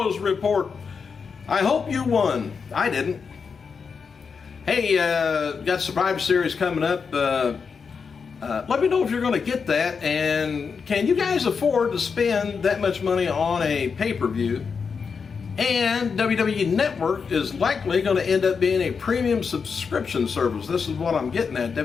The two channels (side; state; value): right; quieter; 5.7 dB